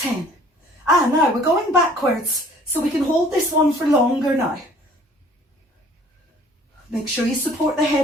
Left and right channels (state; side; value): normal; both; correlation 0.54